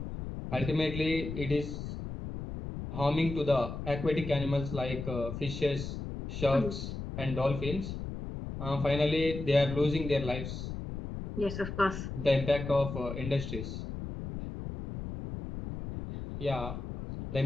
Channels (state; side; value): noise; left; rumble, 7 dB below the sound